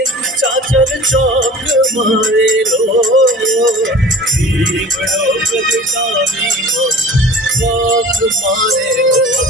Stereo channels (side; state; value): both; normal; correlation 0.42